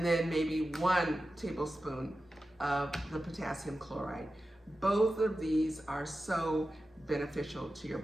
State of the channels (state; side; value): normal; both; correlation 0.93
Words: then maybe 1 tablespoon of the potassium chloride. Both of these are so beneficial to your